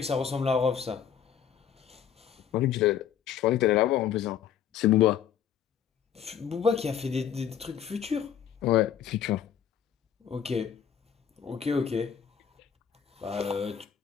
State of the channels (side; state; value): right; quieter; 8.8 dB